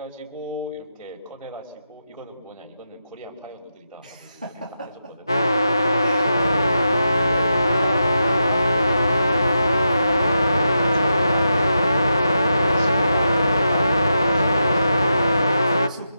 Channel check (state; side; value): inverted; both; correlation -0.87